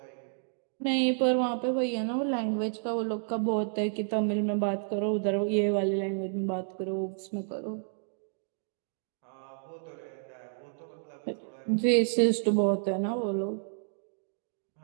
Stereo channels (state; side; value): silent; left; digital silence